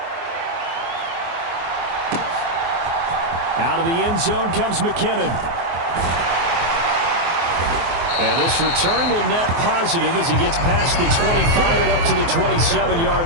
Out of the end zone comes McKinnon. And this return will net positive as he gets past the 25 and up to the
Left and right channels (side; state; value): left; late; 24 ms